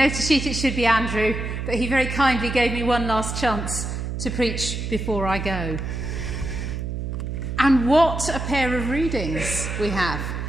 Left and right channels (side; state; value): right; noise; hum, 4 dB below the sound